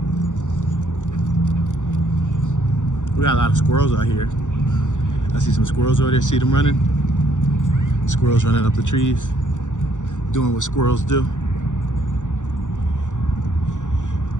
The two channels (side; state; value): right; late; 0.86 ms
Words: We got a lot of squirrels out here. I see some squirrels over there, see them running? Squirrels running up the trees. Doing what squirrels do.